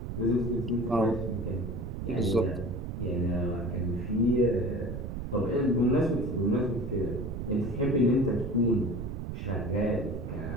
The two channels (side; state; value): right; noise; rumble, 6 dB below the sound